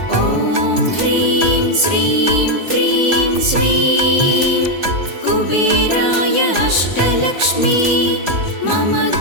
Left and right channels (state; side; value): late; left; 3.4 ms